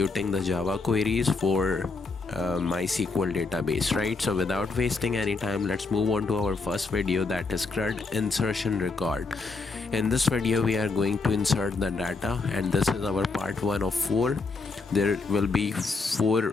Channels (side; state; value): right; quieter; 4.0 dB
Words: the Java queries for MySQL database, right? So without wasting any time, let's move on to our first video, that is CRUD insertion record. In this video we are going to insert the data, and this is our part 1 of 4. There will be 4